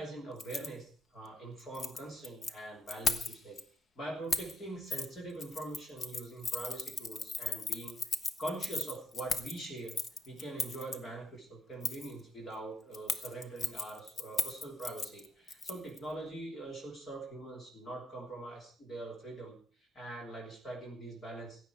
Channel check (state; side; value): normal; both; correlation 0.75